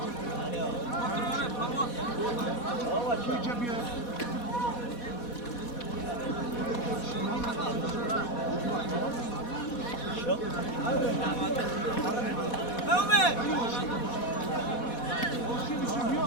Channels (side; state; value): right; late; 4.1 ms